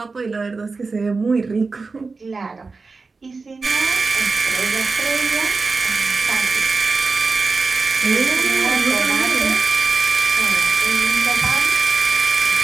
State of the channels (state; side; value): quieter; left; 4.2 dB